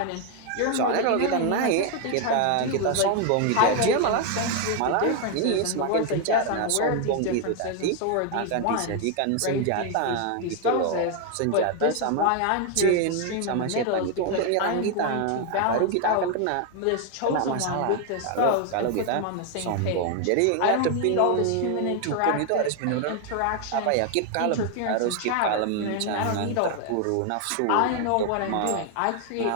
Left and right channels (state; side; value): different; both; correlation 0.00